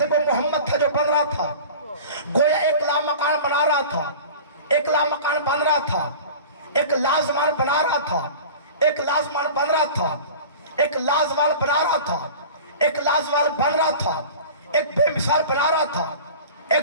وہ محمد تھا جو بن رہا تھا، گویا ایک لامکان بنا رہا تھا، ایک لامکان بن رہا تھا، ایک لازمان بنا رہا تھا، ایک لازمان بن رہا تھا، ایک لازوال بنا رہا تھا، ایک لازوال بن رہا تھا، ایک بے مثال بنا رہا تھا،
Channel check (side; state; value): both; inverted; correlation -0.38